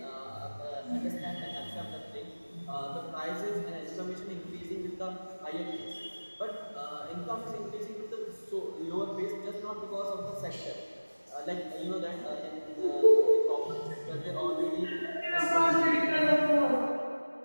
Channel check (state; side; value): inverted; both; correlation -1.00